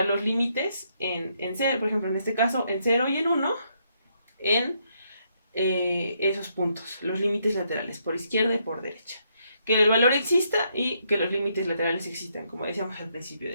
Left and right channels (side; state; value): both; inverted; correlation -0.75